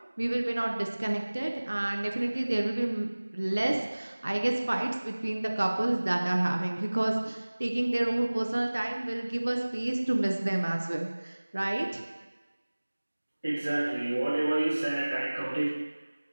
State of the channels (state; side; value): inverted; both; correlation -1.00